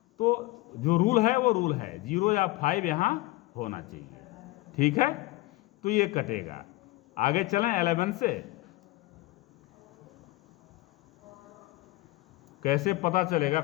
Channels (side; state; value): right; quieter; 19.9 dB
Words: तो जो रूल है वो रूल है, 0 या 5 यहाँ होना चाहिए। ठीक है, तो ये कटेगा। आगे चलें 11 से। कैसे पता चलेगा